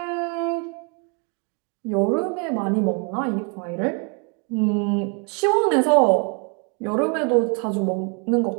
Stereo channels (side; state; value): left; quieter; 36.0 dB